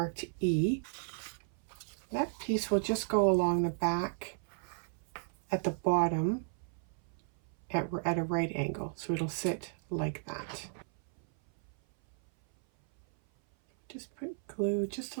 E. That piece will just go along the back at the bottom at a right angle. So it'll sit like that. Just put glue just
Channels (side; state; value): left; silent; 55 dB below the other